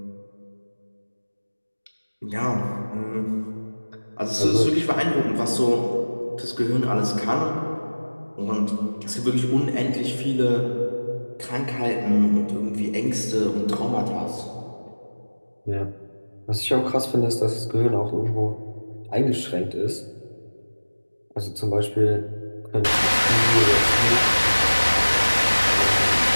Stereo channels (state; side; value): inverted; both; correlation -1.00